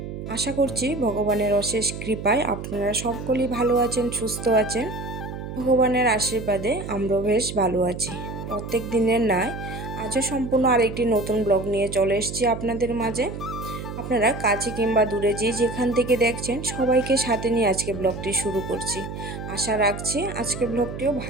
আশা করছি ভগবানের অশেষ কৃপায় আপনারা সকলেই ভালো আছেন, সুস্থ আছেন। ভগবানের আশীর্বাদে আমরাও বেশ ভালো আছি। প্রত্যেক দিনের ন্যায় আজও সম্পূর্ণ আরেকটি নতুন ব্লগ নিয়ে চলে এসেছি আপনাদের মাঝে। আপনারা কাছে কিংবা দূরে যেখান থেকে দেখছেন সবাইকে সাথে নিয়ে আজকে ব্লগটি শুরু করছি। আশা রাখছি আজকে ব্লগটিও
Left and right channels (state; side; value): noise; right; hum, 8 dB below the sound